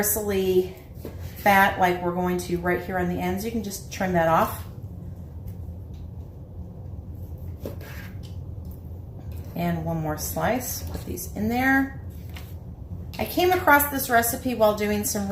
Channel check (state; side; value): identical; both; correlation 1.00